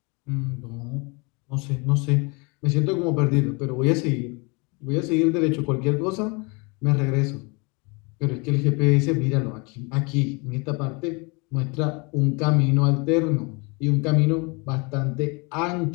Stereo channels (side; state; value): right; quieter; 30.0 dB